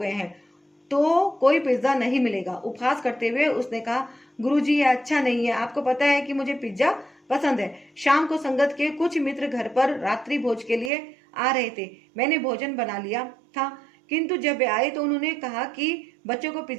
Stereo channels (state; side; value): drops out; left; at 10.9 s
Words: हैं। तो कोई पिज्जा नहीं मिलेगा। उपहास करते हुए उसने कहा, गुरुजी ये अच्छा नहीं है, आपको पता है कि मुझे पिज्जा पसंद है। शाम को संगत के कुछ मित्र घर पर रात्रि भोज के लिए आ रहे थे। मैंने भोजन बना लिया था, किंतु जब वे आए तो उन्होंने कहा कि बच्चों को